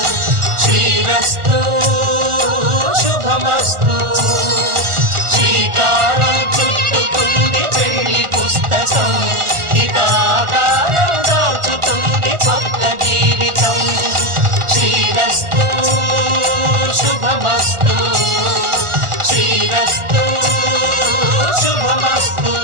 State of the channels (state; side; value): late; left; 1.4 ms